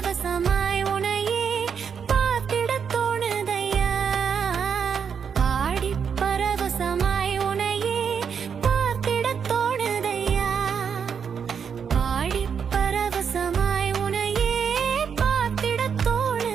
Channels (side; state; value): left; quieter; 6.9 dB